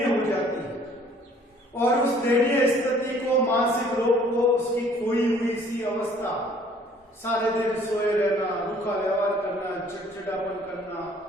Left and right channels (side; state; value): both; normal; correlation 0.57